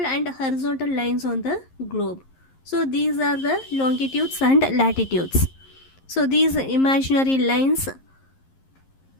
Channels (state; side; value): late; right; 11 ms